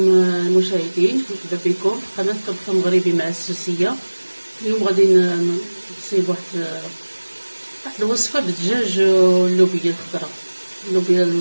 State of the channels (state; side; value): inverted; both; correlation -1.00